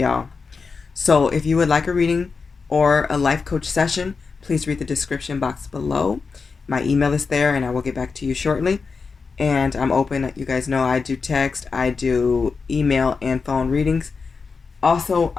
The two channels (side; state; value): right; quieter; 4.9 dB